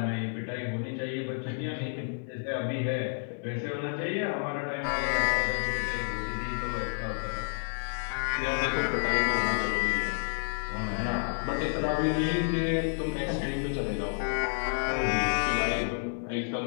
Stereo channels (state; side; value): silent; right; digital silence